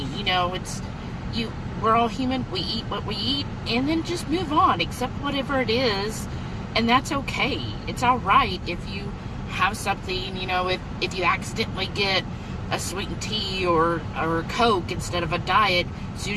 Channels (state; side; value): identical; both; correlation 1.00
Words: You know, we're all human. We eat what we eat, and then just move on, accept whatever it is, and that's okay. It's all right if you have something, you know, if you accidentally get a sweetened tea or a Coke instead of a diet, as soon